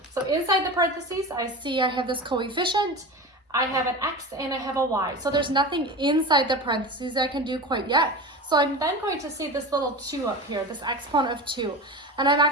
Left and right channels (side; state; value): both; normal; correlation 0.29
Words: So inside the parentheses, I have this coefficient, I have an x, and I have a y. So there's nothing inside the parentheses I can do quite yet. So I'm then going to see this little 2 up here, this exponent of 2. And I'm